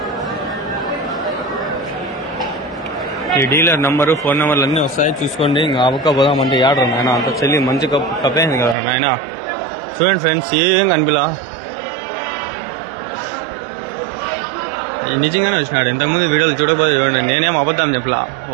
ఈ డీలర్ నంబరు, ఫోన్ నెంబర్లు అన్నీ వస్తాయి, చూసుకోండి. ఇంకా అవక్క పోదామంటే ఏడరు నాయన. అంత చెల్లి మంచి కప్పేసింది కదా నాయన. చూడండి ఫ్రెండ్స్, ఏం కనిపిలా. నిజంగానే వచ్చినాడు. ఇంతకుముందు వీడియోలు చూడకపోతే చూడండి, నేనేం అబద్ధం చెప్పలా,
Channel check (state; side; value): drops out; left; at 8.8 s